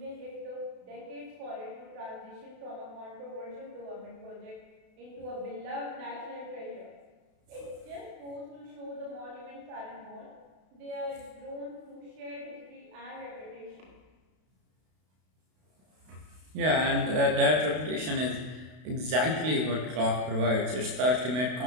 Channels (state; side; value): late; left; 32 ms